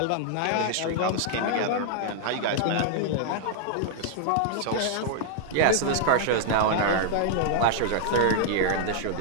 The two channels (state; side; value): different; both; correlation -0.01